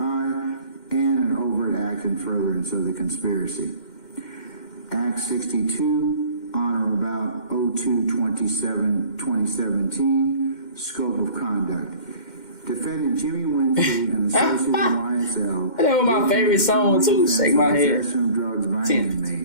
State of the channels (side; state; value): right; late; 2.1 ms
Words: and an overt act in furtherance of the conspiracy. Act 62, on or about 02/27/2017, scope of conduct. Defendant Jimmy Winfield and associate of YSL. That was my favorite song too. Shake my head. Drugs by